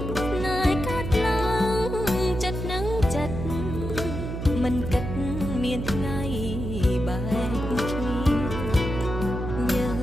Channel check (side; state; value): right; noise; hum, 5 dB below the sound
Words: ណែកាត់ឡើងចិត្តនឹងចិត្តមិនគិតមានថ្ងៃបែកគ្នាយើង